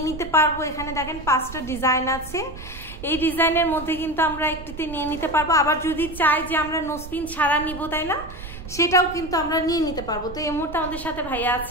নিতে পারবো। এখানে দেখেন 5টা ডিজাইন আছে, এই ডিজাইনের মধ্যে কিন্তু আমরা একটিতে নিয়ে নিতে পারবো। আবার যদি চাই যে আমরা নো স্ক্রিন ছাড়া নিব, তাই না, সেটাও কিন্তু আমরা নিয়ে নিতে পারবো। তো এই মুহূর্তে আমাদের সাথে ভাইয়া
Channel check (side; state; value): right; noise; rumble, 13 dB below the sound